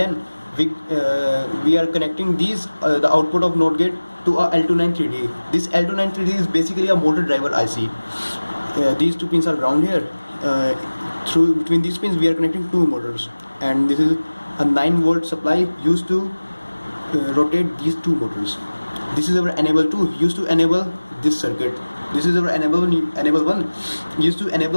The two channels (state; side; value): inverted; both; correlation -1.00